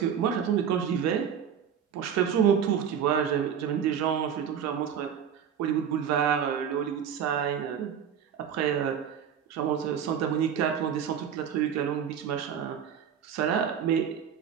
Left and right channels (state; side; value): quieter; left; 8.3 dB